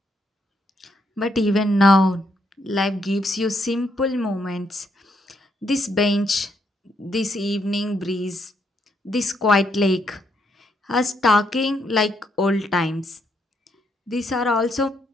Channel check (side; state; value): both; normal; correlation 0.75